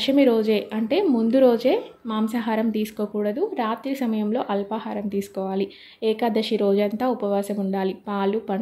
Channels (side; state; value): both; identical; correlation 1.00